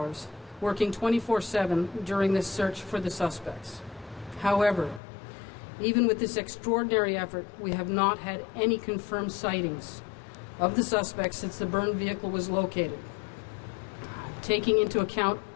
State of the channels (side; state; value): right; drops out; at 5.0 s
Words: working 24/7 during this search for the suspects. However, even with this extraordinary effort, we have not had any confirmed sightings of the suspects since the burned vehicle was located. Taking into account